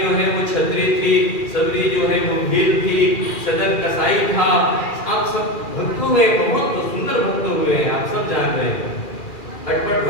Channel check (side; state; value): right; late; 2.4 ms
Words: है वो क्षत्रिय थी, सबरी जो है वो भील थी, सदन कसाई था। आप सब भक्त हुए, बहुत सुंदर भक्त हुए हैं, आप सब जान रहे हैं। अटपट